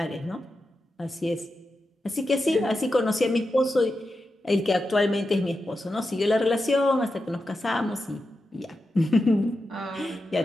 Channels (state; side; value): normal; both; correlation 0.89